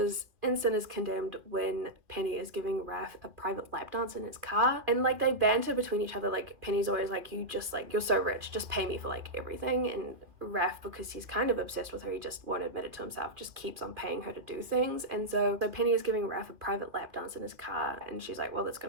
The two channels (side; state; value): left; late; 2.4 ms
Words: in Sin is Condemned when Penny is giving Raph a private lap dance in his car, and like they banter between each other. Like, Penny's always like, you just like, you're so rich, just pay me for like everything, and Raph, because he's kind of obsessed with her, he just won't admit it to himself, just keeps on paying her to do things. And so Penny is giving Raph a private lap dance in his car, and she's like, well, that's